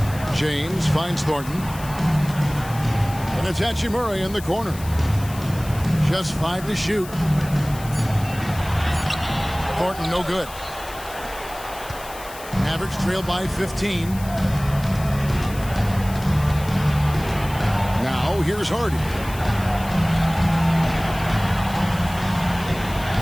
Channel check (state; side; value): noise; left; hiss, 16 dB below the sound